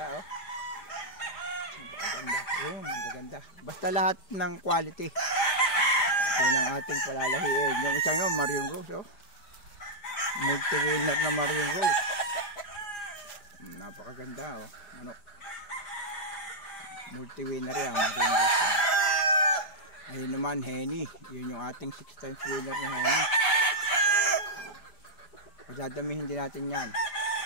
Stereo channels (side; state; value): right; late; 5.0 ms